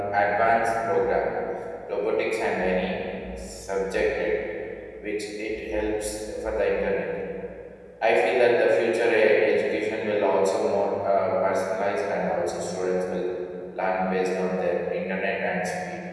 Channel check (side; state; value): both; identical; correlation 1.00